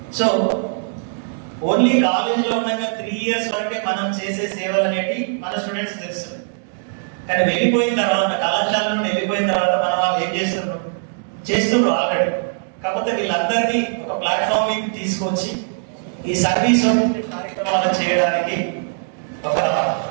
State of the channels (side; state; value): left; silent; digital silence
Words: so only college లో ఉండగా 3 years వరకే మనం చేసే సేవలు అనేవి మన స్టూడెంట్స్ తెలుస్తుంది. కానీ వెళ్ళిపోయిన తర్వాత, కళాశాల నుండి వెళ్ళిపోయిన తర్వాత మన వాళ్ళు ఏం చేస్తున్నారు ఆల్రెడీ. కాకపోతే వీళ్ళందరినీ ఒక ప్లాట్ఫామ్ మీద తీసుకొచ్చి ఈ సర్వీస్ కార్యక్రమాలు చేయడానికి ఒక